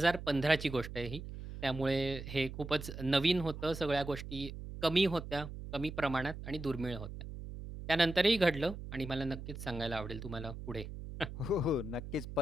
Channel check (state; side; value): noise; right; hum, 10 dB below the sound